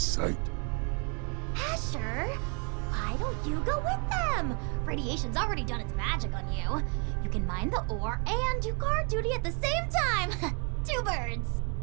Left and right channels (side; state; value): left; quieter; 37.0 dB